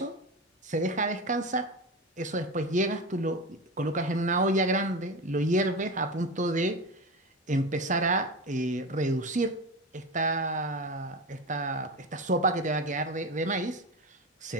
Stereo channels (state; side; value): normal; both; correlation 0.23